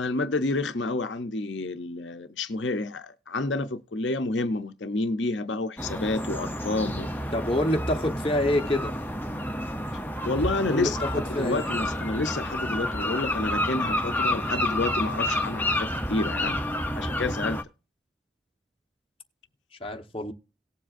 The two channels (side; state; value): both; normal; correlation 0.54